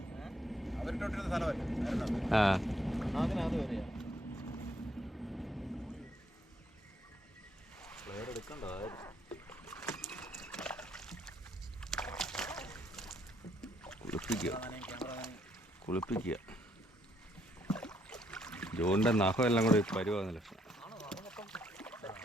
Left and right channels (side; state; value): both; normal; correlation 0.71